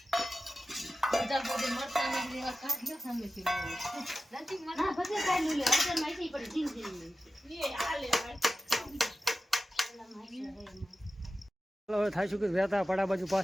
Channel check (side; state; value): both; normal; correlation 0.94